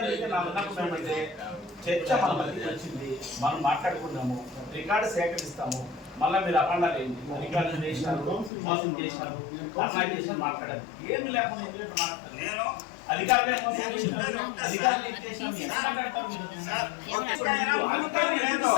చర్చ మన మధ్యకి వచ్చింది, మనం మాట్లాడుకున్నాము, రికార్డు సేకరిస్తాము. మళ్ళీ మీరు అఖండాలు ఏంటి, రికార్డు చేసినారు, మోసం చేసినారు, అమ్మాయి చేసినారు మాట్లాడాలి. ఏమి లేకుండా మాట్లాడాలి. నేను అధికారులే మోసం చేసినారు, అధికారులు ఏం చేసినారు, ఎలా మాట్లాడతారు మీరు?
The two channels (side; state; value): right; drops out; at 8.5 s